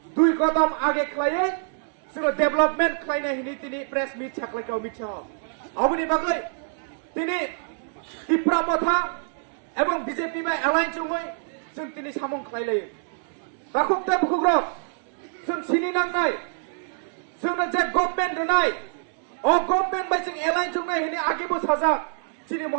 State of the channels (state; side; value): silent; left; 61 dB below the other